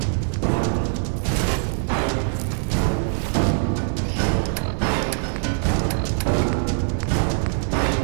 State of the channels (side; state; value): left; silent; 64 dB below the other